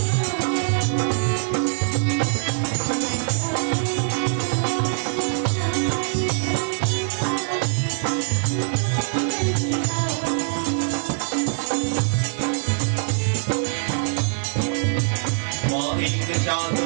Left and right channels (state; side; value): silent; left; 61 dB below the other